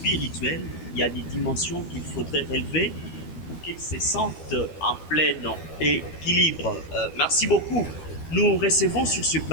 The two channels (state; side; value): late; right; 12 ms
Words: Il y a des dimensions qu'il faudrait relever pour qu'il se sente en plein équilibre. Merci beaucoup. Nous recevons sur ce